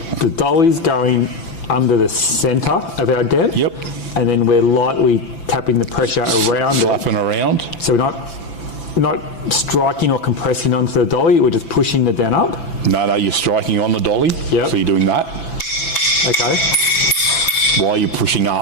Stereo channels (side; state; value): right; late; 5.9 ms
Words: dolly's going under the centre of our dent. Yep. And then we're lightly tapping the pressure around Slapping around. So we're not striking or compressing onto the dolly, we're just pushing the dent up? No, you're striking on the dolly. Yep. So you're doing that. Okay. While you're pushing